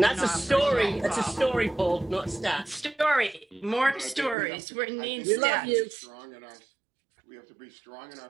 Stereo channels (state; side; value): drops out; left; at 4.4 s